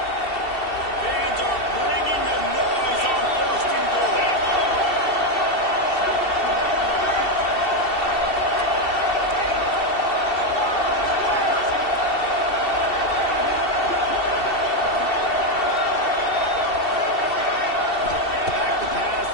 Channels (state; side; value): late; right; 2.7 ms